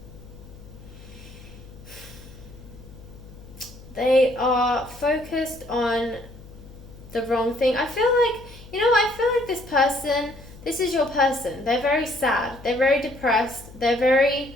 they are focused on the wrong thing. I feel like, you know, I feel like this person, this is your person. They're very sad. They're very depressed. They're very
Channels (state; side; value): noise; left; hum, 18 dB below the sound